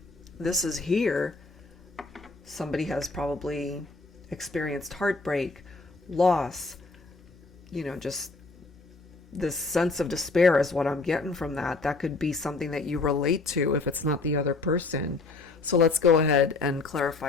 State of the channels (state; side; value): quieter; right; 3.6 dB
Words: this is here. Somebody has probably experienced heartbreak, loss, you know, just this sense of despair is what I'm getting from that. That could be something that you relate to if it's not the other person. So let's go ahead and